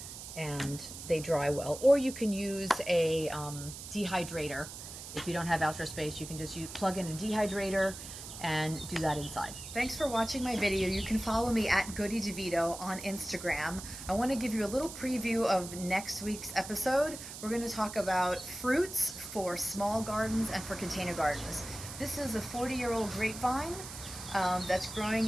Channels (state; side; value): noise; right; hiss, 11 dB below the sound